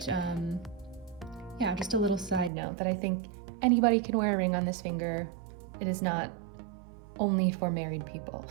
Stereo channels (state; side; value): drops out; left; at 2.5 s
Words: yeah, just a little side note that I think anybody can wear a ring on this finger. It is not only for married people.